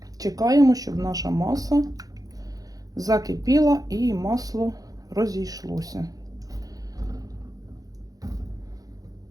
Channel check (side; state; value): left; late; 0.18 ms